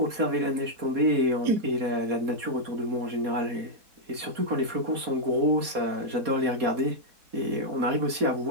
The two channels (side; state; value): left; late; 4.2 ms